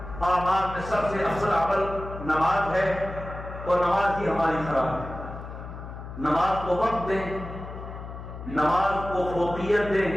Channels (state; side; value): noise; left; hum, 11 dB below the sound